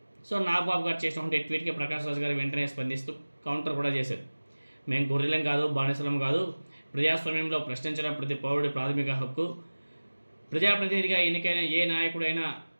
సో నాగబాబు గారు చేసినటువంటి ట్వీట్కి ప్రకాష్ రాజ్ గారు వెంటనే స్పందిస్తూ కౌంటర్ కూడా చేశారు. మేము గొర్రెలం కాదు, బానిసలం కాదు, ప్రజాస్వామ్యంలో ప్రశ్నించడం ప్రతి పౌరుడి ప్రాథమిక హక్కు, ప్రజాప్రతినిధిగా ఎన్నికైన ఏ నాయకుడైనా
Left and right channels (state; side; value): inverted; both; correlation -1.00